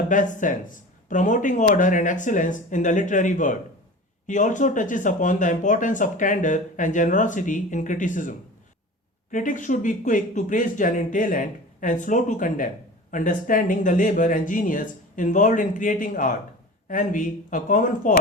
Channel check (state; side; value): normal; both; correlation 0.36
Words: best sense, promoting order and excellence in the literary world. He also touches upon the importance of candor and generosity in criticism. Critics should be quick to praise genuine talent and slow to condemn, understanding the labor and genius involved in creating art. Envy, a common